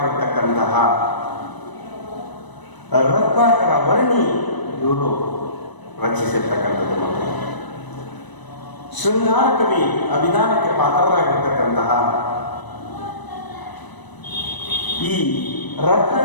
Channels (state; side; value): late; right; 1.0 ms